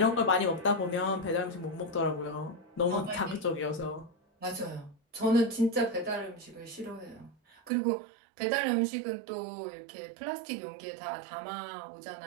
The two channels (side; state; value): left; drops out; at 7.7 s